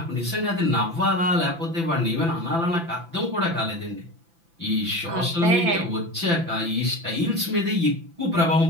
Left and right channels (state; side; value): late; left; 5.9 ms